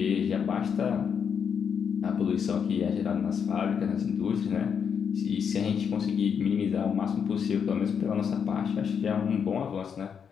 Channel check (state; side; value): quieter; right; 7.1 dB